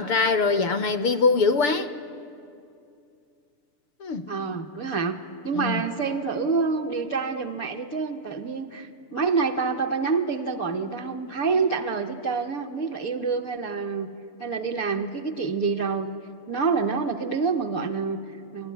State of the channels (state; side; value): late; right; 6.8 ms